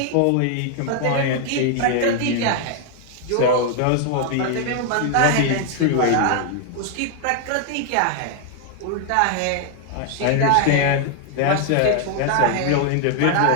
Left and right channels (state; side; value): different; both; correlation 0.00